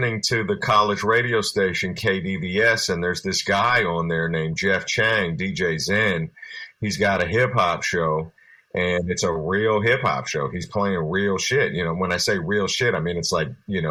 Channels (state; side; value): identical; both; correlation 1.00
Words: to the college radio station KDVS, and there's this guy on there named Jeff Chang, DJ Zen. He's got a hip hop show, and it's a real hip hop show. He's playing real shit. When I say real shit, I mean it's like,